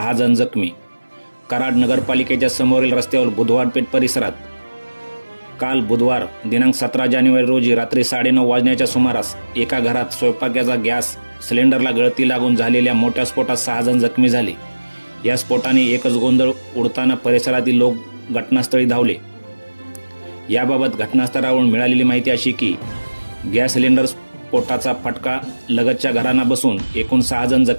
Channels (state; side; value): inverted; both; correlation -1.00